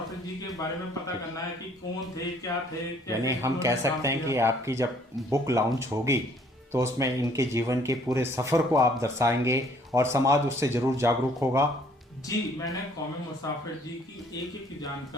जी के बारे में पता करना है कि कौन थे, क्या थे। यानी हम कह सकते हैं कि आपकी जब बुक लॉन्च होगी तो उसमें इनके जीवन के पूरे सफर को आप दर्शाएंगे और समाज उससे जरूर जागरूक होगा। जी, मैंने कौमी मुसाफिर जी की एक एक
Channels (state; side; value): normal; both; correlation 0.61